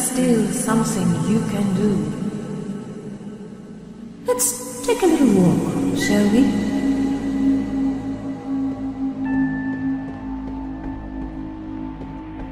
still something you can do. Let's take a little walk, shall we?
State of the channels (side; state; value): both; identical; correlation 1.00